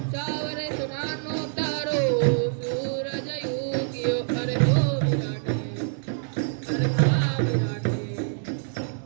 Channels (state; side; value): silent; left; digital silence